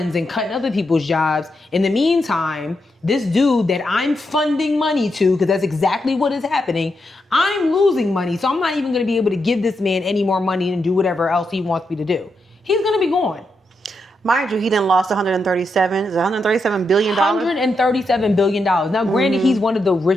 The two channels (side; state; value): both; normal; correlation 0.83